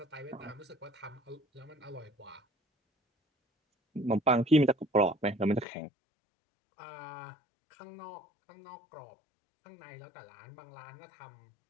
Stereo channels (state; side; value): drops out; right; at 5.7 s